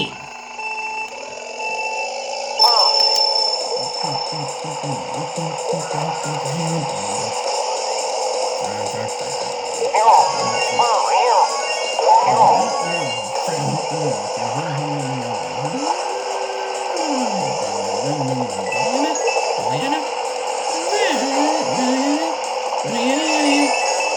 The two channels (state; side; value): identical; both; correlation 1.00